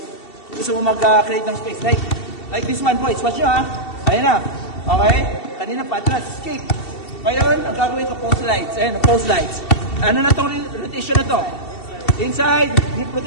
Gusto mo mag-create ng space. Like this one, boys. Watch nyo, ha? Ayan na. Okay? Kanina patras, escape. Ngayon, ang gagawin ko, post slides. Ayan, post slides. Ano na itong rotation na to? Inside, deep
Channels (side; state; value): right; late; 2.7 ms